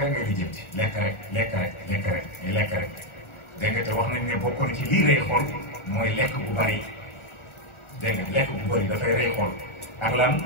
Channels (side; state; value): right; late; 1.4 ms